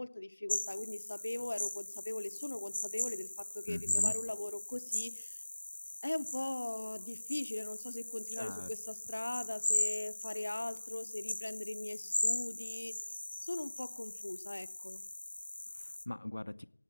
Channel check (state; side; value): inverted; both; correlation -1.00